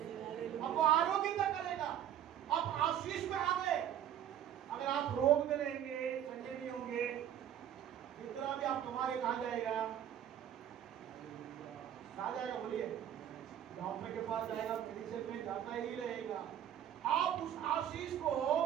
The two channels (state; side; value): quieter; left; 10.4 dB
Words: आरोग्य करेगा, आप आशीष में आ गए। अगर आप रोग में रहेंगे, चंगे नहीं होंगे, जितना भी आप कमा रहे, कहाँ जाएगा? कहाँ जाएगा? बोलिए। डॉक्टर के पास जाएगा, मेडिसिन में जाता ही रहेगा। आप उस आशीष को